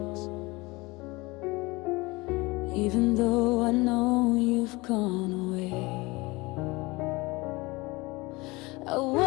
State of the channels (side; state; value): right; quieter; 23.3 dB